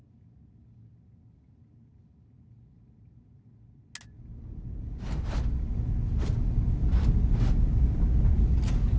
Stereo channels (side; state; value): both; identical; correlation 1.00